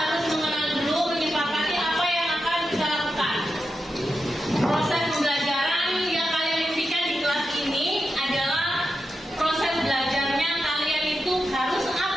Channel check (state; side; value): normal; both; correlation 0.89